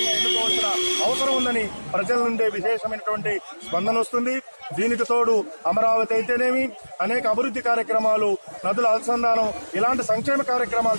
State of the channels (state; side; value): inverted; both; correlation -1.00